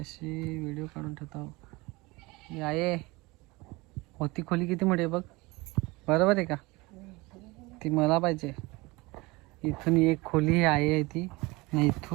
व्हिडिओ काढून ठेवतो. आहे होती खोली किती मोठी आहे बघ. बरोबर आहे का? ती मला पाहिजे. इथून एक खोली आहे ती. आणि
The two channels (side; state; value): left; quieter; 23.3 dB